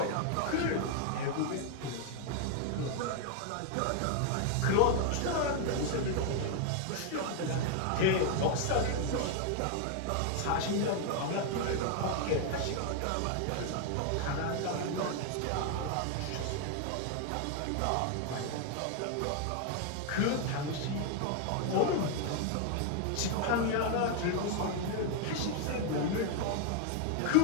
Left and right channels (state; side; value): different; both; correlation 0.00